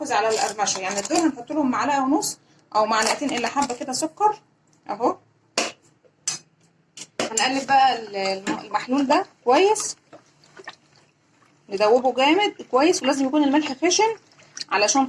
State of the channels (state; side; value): identical; both; correlation 1.00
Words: على القرمشه، يعني دول هنحط لهم معلقه ونص او معلقتين الا حبه كده سكر اهو. هنقلب بقى المحلول ده كويس، ندوبه جامد كويس. ولازم يكون الملح خشن علشان